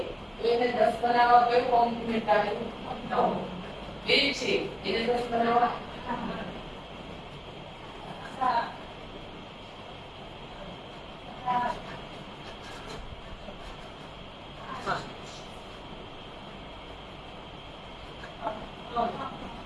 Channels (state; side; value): identical; both; correlation 1.00